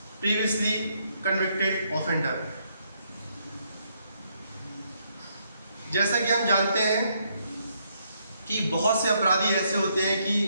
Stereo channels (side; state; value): both; inverted; correlation -0.74